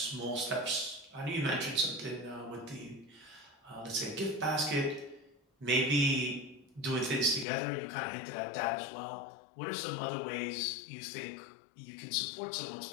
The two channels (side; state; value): right; drops out; at 7.5 s